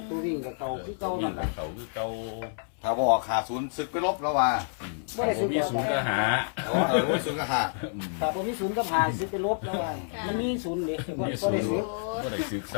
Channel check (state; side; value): silent; right; 59 dB below the other